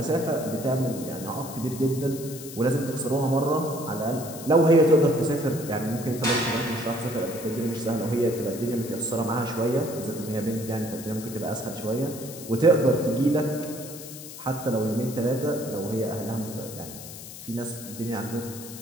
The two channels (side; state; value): left; noise; hiss, 13 dB below the sound